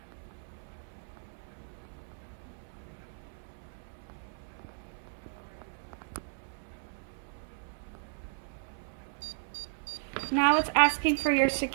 Now it's asking for your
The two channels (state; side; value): silent; left; 54 dB below the other